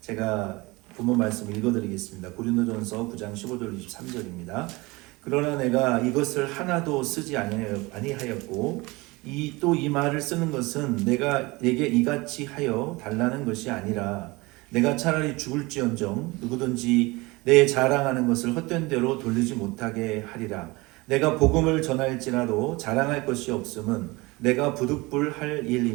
본문 말씀 읽어드리겠습니다. 고린도전서 9장 15절 23절입니다. 그러나 내가 이것을 하나도 쓰지 아니하였고 또 이 말을 쓰는 것은 내가 내게 이같이 하여 달라는 것이 아니라 내가 차라리 죽을지언정 누구든지 내 자랑하는 것을 헛된 대로 돌리지 못하게 하리라. 내가 복음을 전할지라도 자랑할 것이 없음은 내가 부득불할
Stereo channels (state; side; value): quieter; left; 23.3 dB